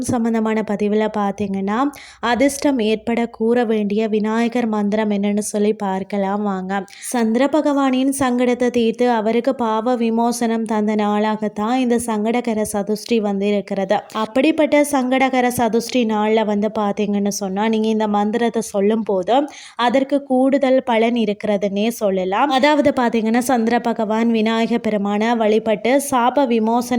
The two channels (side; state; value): both; identical; correlation 1.00